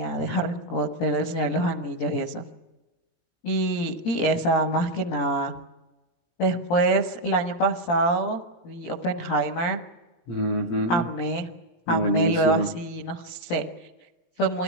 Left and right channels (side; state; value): right; late; 17 ms